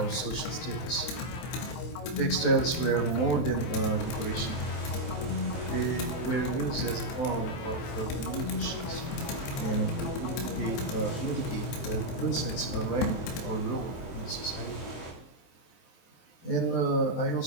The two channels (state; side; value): late; right; 23 ms